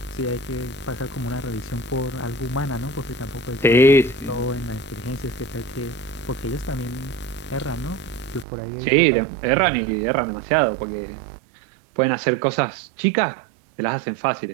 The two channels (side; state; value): left; drops out; at 8.5 s